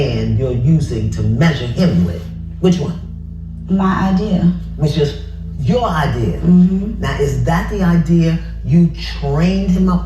you're using to measure him with. Which one? my idea. Which is your idea. Mm-hmm. Now, is that the idea you trained him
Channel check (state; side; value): identical; both; correlation 1.00